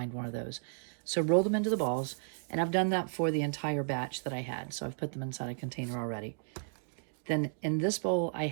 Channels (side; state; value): left; silent; digital silence